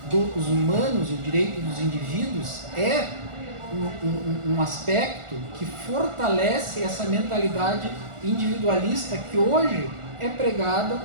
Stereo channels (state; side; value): late; left; 1.4 ms